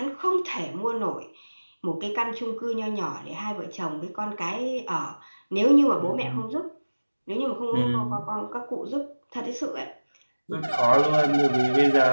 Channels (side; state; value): both; inverted; correlation -1.00